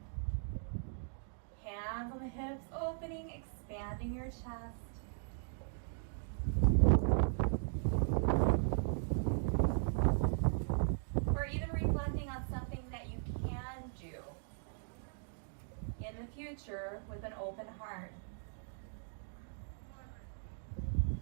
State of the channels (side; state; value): left; silent; digital silence